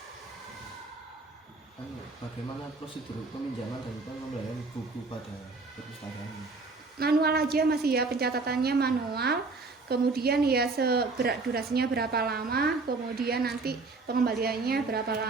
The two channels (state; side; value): quieter; left; 3.8 dB